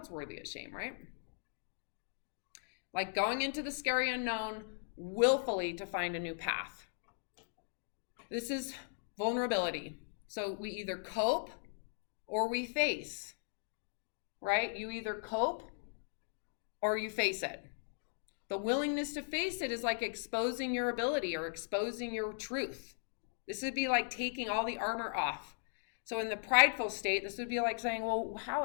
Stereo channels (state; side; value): silent; right; digital silence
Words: worthy of shame, right? Like going into the scary unknown willfully to find a new path. This is vulnerability. So we either cope or we face, right? You either cope or you face it. The willingness to face it is like exposing your ability or exposing your truth. This would be like taking all the armor off. So in the prideful state, this would be like saying, well,